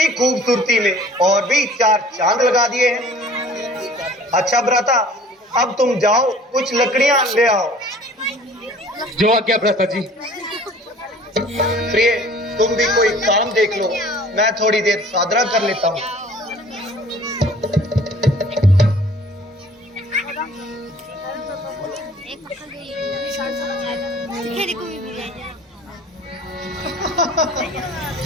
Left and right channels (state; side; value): normal; both; correlation 0.49